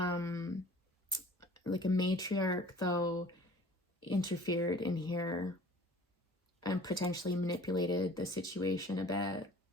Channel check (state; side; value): normal; both; correlation 0.48